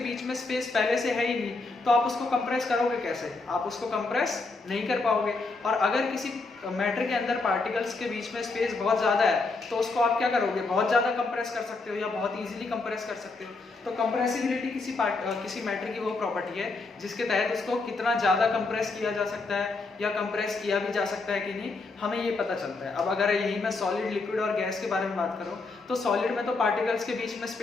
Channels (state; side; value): quieter; right; 3.7 dB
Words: बीच में स्पेस पहले से है ही नहीं तो आप उसको कंप्रेस करोगे कैसे? आप उसको कंप्रेस नहीं कर पाओगे। और अगर किसी मैटर के अंदर पार्टिकल्स के बीच में स्पेस बहुत ज्यादा है तो उसको आप क्या करोगे, बहुत ज्यादा कंप्रेस कर सकते हो या बहुत इजीली कंप्रेस कर सकते हो। तो कंप्रेसिबिलिटी किसी मैटर की वो प्रॉपर्टी है जिसके तहत उसको कितना ज्यादा कंप्रेस किया जा सकता है या कंप्रेस किया भी जा सकता है कि नहीं, हमें ये पता चलता है। अब अगर यही मैं सॉलिड, लिक्विड और गैस के बारे में बात करूं तो सॉलिड में तो पार्टिकल्स के बीच में